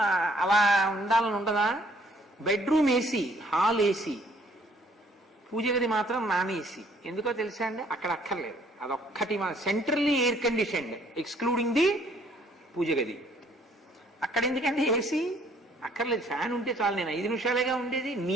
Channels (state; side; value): normal; both; correlation 0.62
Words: అలా ఉండాలని ఉండదా? బెడ్రూమ్ ఏసీ, హాల్ ఏసీ, పూజ గది మాత్రం నాన్ ఏసీ. ఎందుకో తెలుసా అండి? అక్కడ అక్కర్లేదు, అదొక్కటి centrally air conditioned excluding the puja గది. అక్కడ ఎందుకండి ఏసీ? అక్కర్లేదు, ఫ్యాన్ ఉంటే చాలు. నేను 5 నిమిషాలేగా ఉండేది,